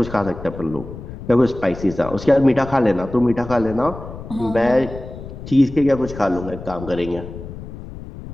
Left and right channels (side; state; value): left; noise; rumble, 12 dB below the sound